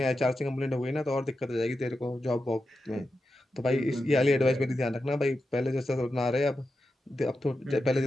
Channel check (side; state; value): both; normal; correlation 0.89